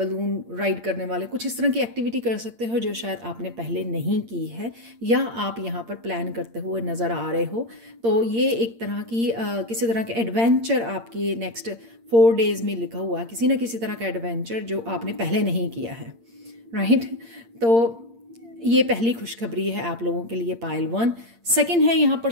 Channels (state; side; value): late; left; 8.7 ms